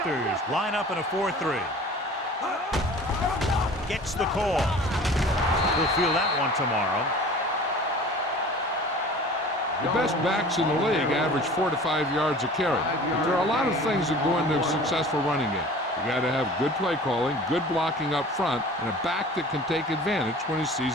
line up in a 4-3. Gets the call. We'll feel that one tomorrow. The best backs in the league average 4 to 5 yards a carry. But there are a lot of things that go into a successful running game. You got to have good play calling, good blocking up front, and a back that can take advantage when he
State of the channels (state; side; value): normal; both; correlation 0.43